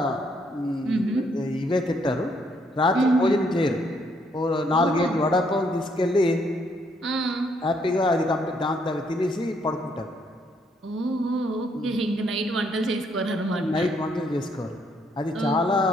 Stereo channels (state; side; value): normal; both; correlation 0.71